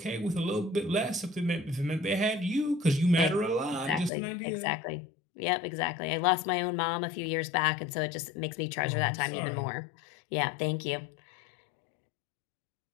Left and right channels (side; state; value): right; drops out; at 4.1 s